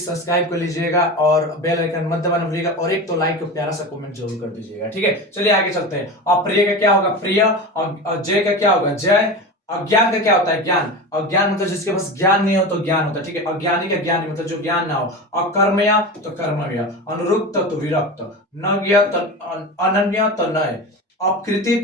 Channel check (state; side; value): normal; both; correlation 0.27